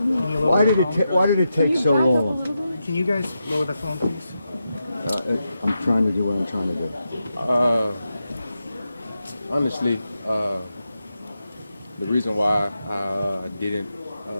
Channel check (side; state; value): both; inverted; correlation -0.88